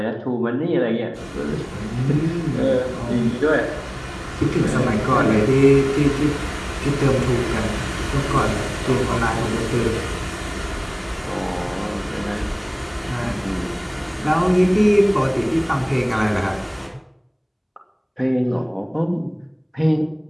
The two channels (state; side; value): identical; both; correlation 1.00